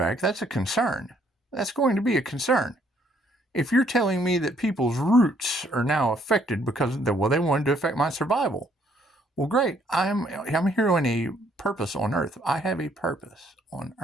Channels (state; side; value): normal; both; correlation 0.66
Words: that's a concern. That's going to be a concern. If you're telling me that people's roots are now affected because they wanted to affect my survival, well, great. I'm here on a purpose on Earth. I have a purpose on